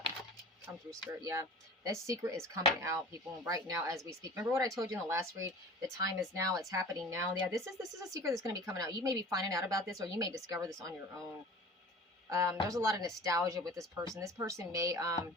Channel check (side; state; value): both; normal; correlation 0.41